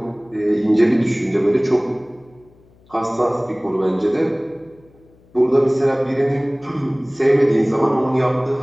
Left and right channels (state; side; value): noise; left; hum, 30 dB below the sound